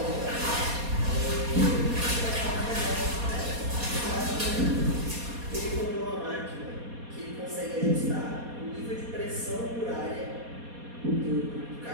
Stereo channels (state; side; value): late; left; 4.2 ms